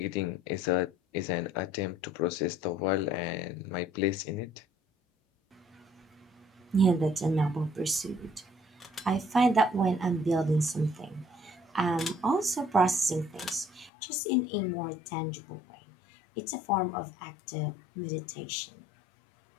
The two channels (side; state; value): right; drops out; at 13.9 s